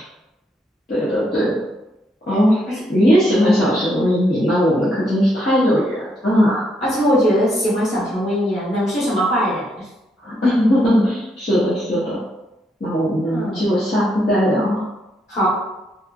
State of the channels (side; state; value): both; normal; correlation 0.76